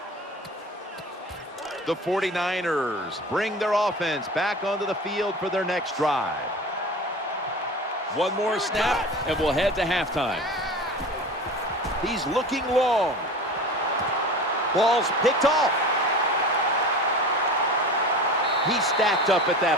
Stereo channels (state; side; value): normal; both; correlation 0.35